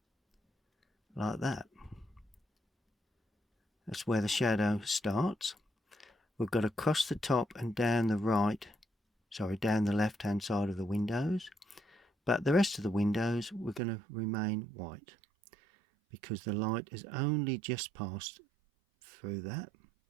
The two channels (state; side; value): drops out; left; at 13.8 s